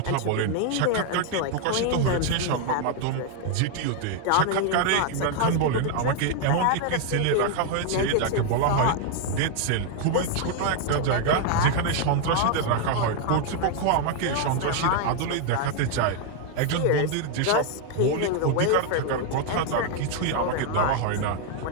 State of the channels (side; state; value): both; different; correlation 0.00